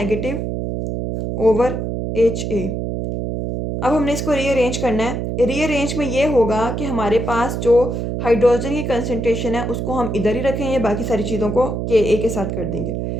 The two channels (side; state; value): right; noise; hum, 3 dB below the sound